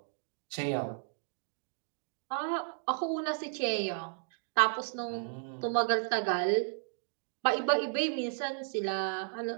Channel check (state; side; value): silent; left; digital silence